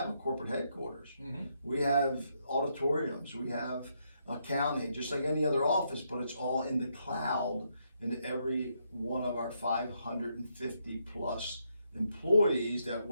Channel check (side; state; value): both; inverted; correlation -0.77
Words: a corporate headquarters. Mm-hmm. We have auditoriums. We have accounting, just like any other office, but it's all in the cloud. And every one of our 550 plus employees that